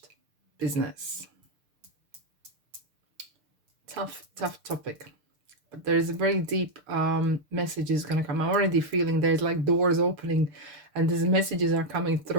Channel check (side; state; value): left; late; 6.7 ms